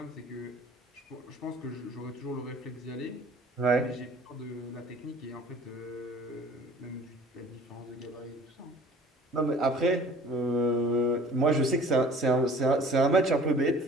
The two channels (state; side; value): normal; both; correlation 0.49